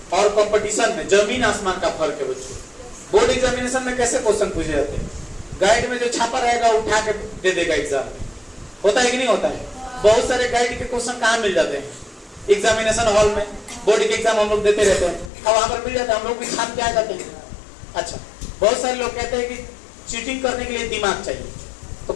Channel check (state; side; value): drops out; right; at 15.3 s